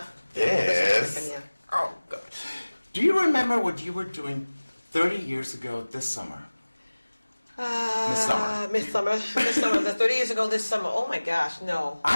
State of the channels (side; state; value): both; inverted; correlation -1.00